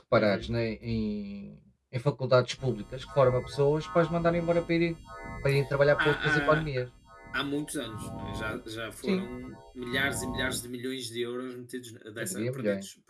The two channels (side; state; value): both; identical; correlation 1.00